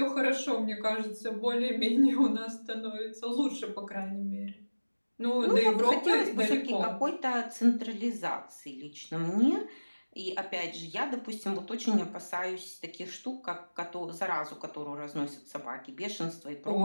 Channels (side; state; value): both; inverted; correlation -1.00